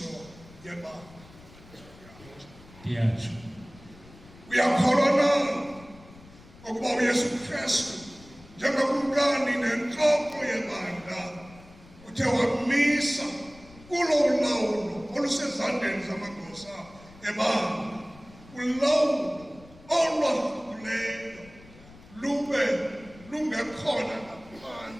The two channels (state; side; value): noise; left; rumble, 22 dB below the sound